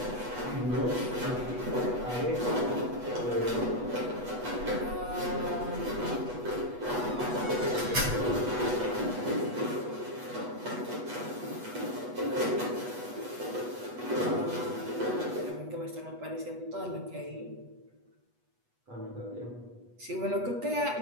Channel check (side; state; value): left; late; 8.2 ms